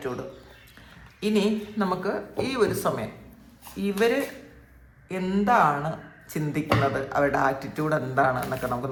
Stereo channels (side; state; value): both; identical; correlation 1.00